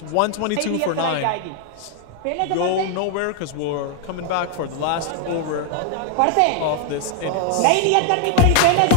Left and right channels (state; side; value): different; both; correlation 0.00